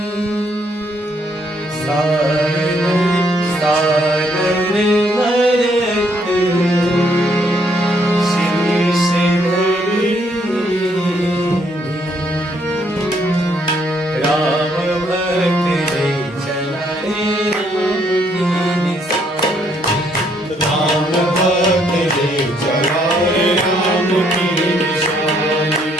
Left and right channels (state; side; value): normal; both; correlation 0.70